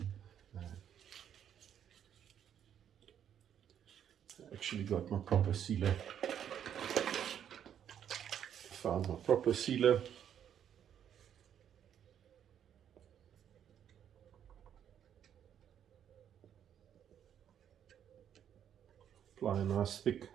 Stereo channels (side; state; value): left; quieter; 9.3 dB